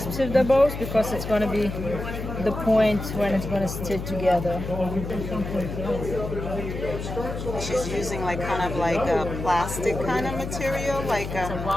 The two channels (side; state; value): left; noise; hum, 6 dB below the sound